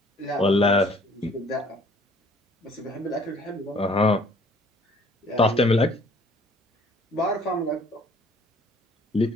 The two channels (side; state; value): both; normal; correlation 0.57